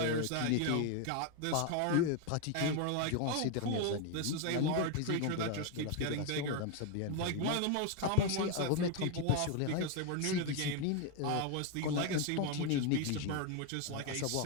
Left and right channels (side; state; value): both; different; correlation 0.01